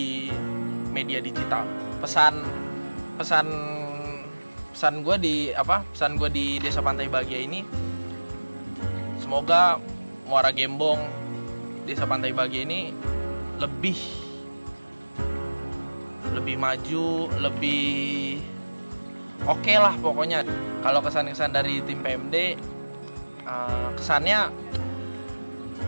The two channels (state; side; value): inverted; both; correlation -1.00